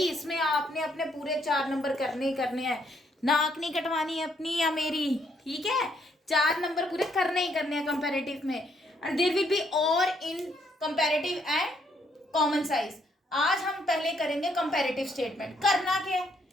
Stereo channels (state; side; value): normal; both; correlation 0.71